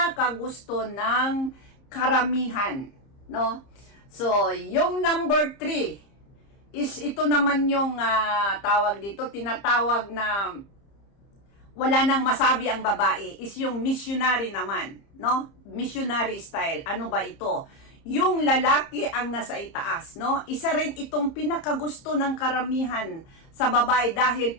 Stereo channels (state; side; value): late; right; 30 ms